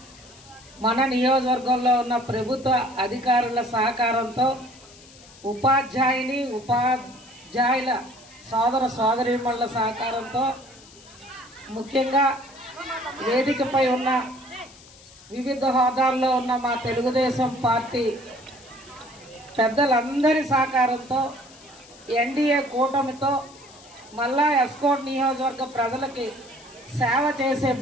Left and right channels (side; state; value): left; noise; hiss, 22 dB below the sound